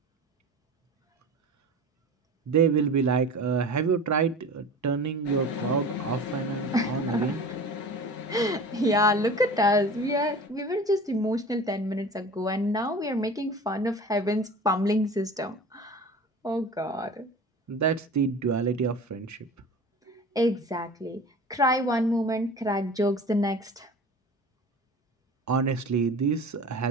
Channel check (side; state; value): both; normal; correlation 0.37